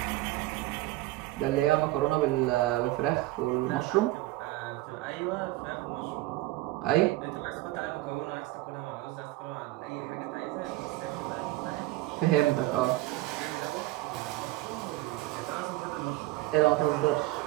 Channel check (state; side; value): quieter; left; 18.1 dB